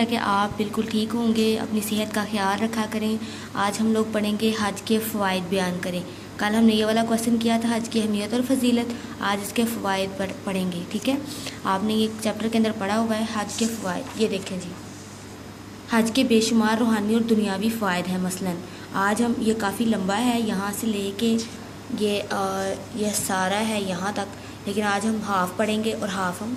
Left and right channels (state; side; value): identical; both; correlation 1.00